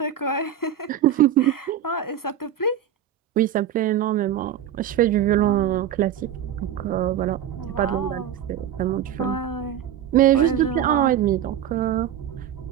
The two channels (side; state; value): left; quieter; 9.9 dB